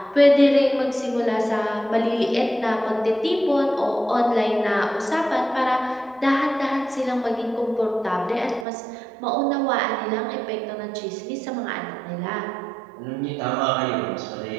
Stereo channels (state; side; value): drops out; left; at 8.7 s